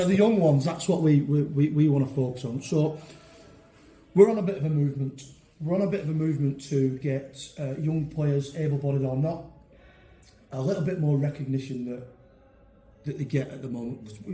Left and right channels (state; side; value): identical; both; correlation 1.00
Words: the young ones, that's what we want to focus on. So we're on a bit of a movement. We're on a bit of a movement to get young players, able-bodied or not, a little bit more recognition that they get at the moment.